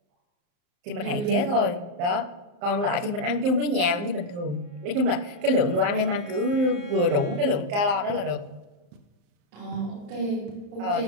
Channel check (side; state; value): left; late; 34 ms